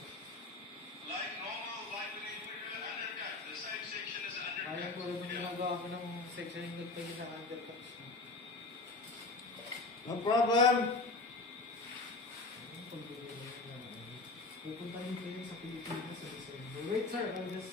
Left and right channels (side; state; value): right; quieter; 3.3 dB